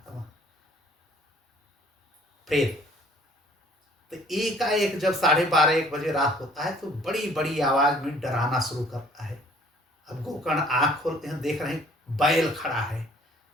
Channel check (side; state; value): both; normal; correlation 0.56